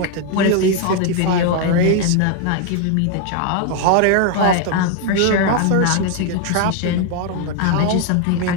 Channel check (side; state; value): both; different; correlation 0.00